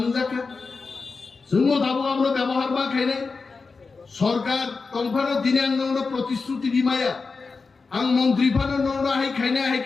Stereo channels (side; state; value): right; quieter; 4.4 dB